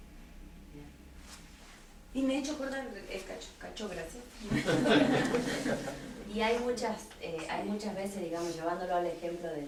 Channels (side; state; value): both; identical; correlation 1.00